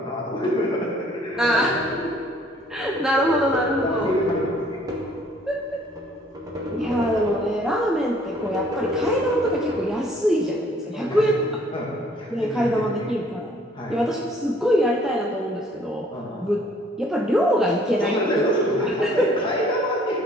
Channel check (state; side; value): normal; both; correlation 0.59